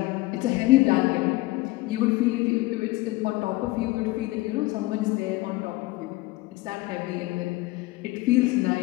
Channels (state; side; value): quieter; right; 19.9 dB